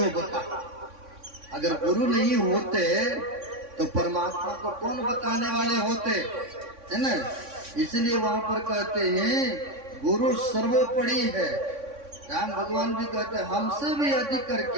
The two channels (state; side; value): late; left; 3.6 ms